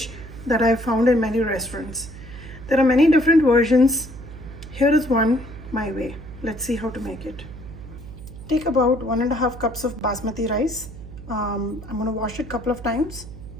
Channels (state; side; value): noise; right; hum, 14 dB below the sound